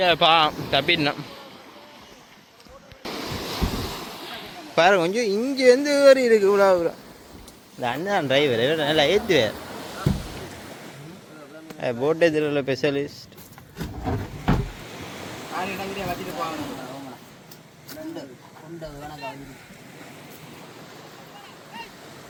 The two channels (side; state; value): both; identical; correlation 1.00